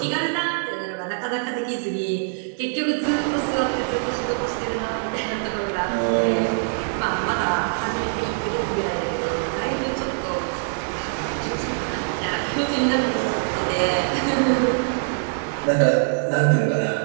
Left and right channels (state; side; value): silent; left; digital silence